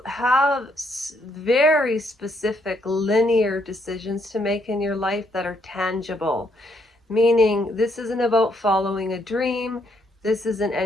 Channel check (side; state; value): both; normal; correlation 0.73